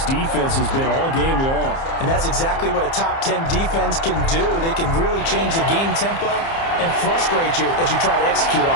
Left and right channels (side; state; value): right; late; 30 ms